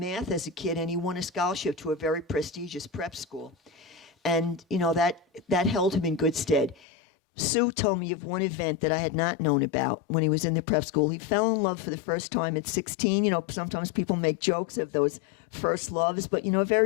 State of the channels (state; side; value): drops out; right; at 6.8 s